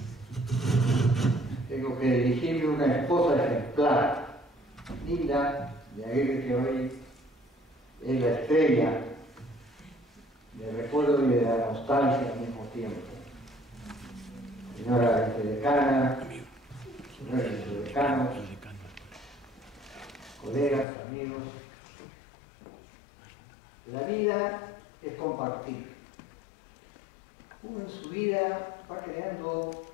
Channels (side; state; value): right; drops out; at 20.9 s